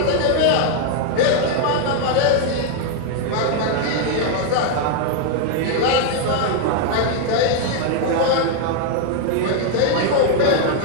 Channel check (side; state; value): both; different; correlation 0.00